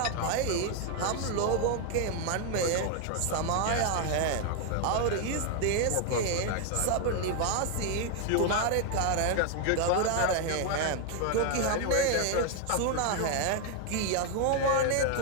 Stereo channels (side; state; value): both; different; correlation 0.00